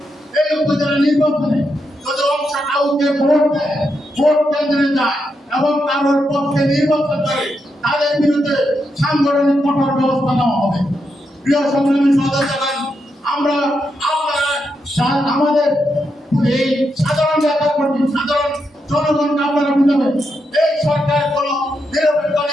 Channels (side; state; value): both; normal; correlation 0.83